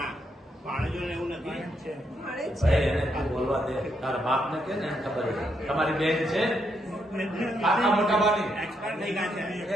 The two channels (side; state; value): both; normal; correlation 0.78